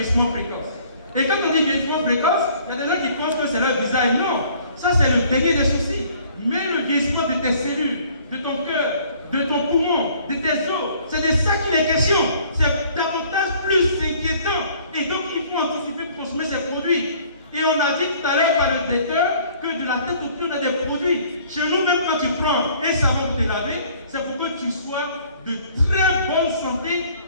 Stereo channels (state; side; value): inverted; both; correlation -0.56